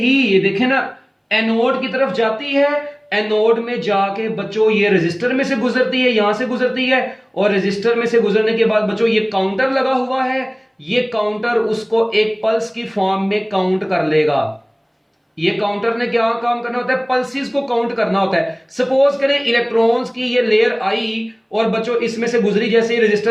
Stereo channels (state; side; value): identical; both; correlation 1.00